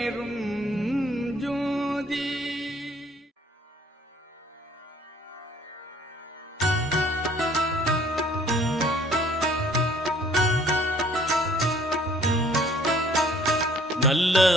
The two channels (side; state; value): both; normal; correlation 0.57